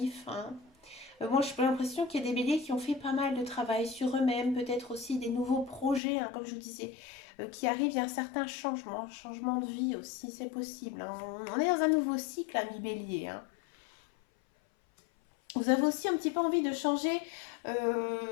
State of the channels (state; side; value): drops out; right; at 6.0 s